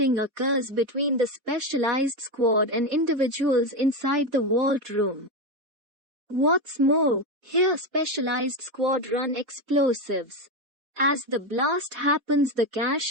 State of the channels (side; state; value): left; late; 4.1 ms